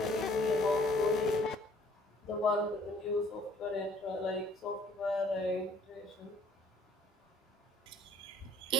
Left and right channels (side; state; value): both; normal; correlation 0.58